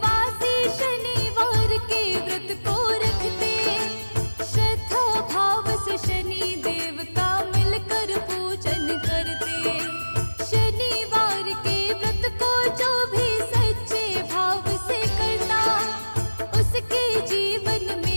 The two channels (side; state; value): both; inverted; correlation -1.00